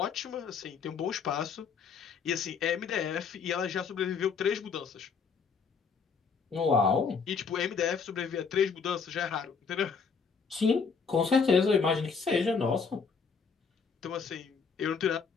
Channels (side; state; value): right; quieter; 5.6 dB